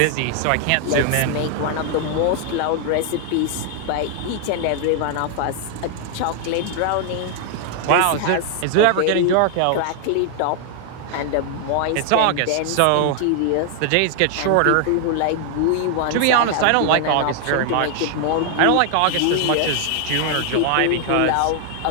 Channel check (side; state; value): both; different; correlation 0.00